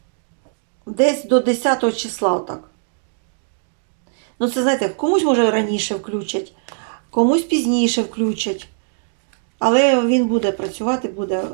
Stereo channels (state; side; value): silent; left; digital silence